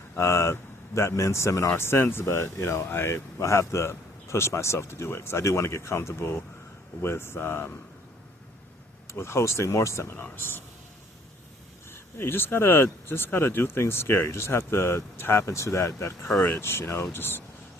that men's seminar since, but I'll have to push myself to do it because I do want to get comfortable with hosting more seminars. Yeah, you just gotta do things scary. You just have to tap into that courage. Just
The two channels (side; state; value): both; normal; correlation 0.60